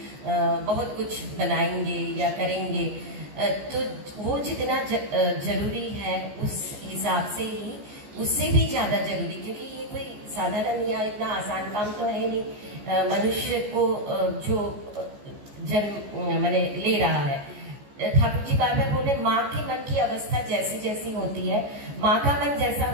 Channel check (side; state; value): left; late; 14 ms